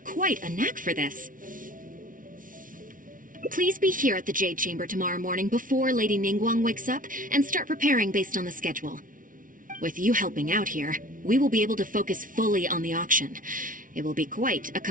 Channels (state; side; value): late; left; 0.39 ms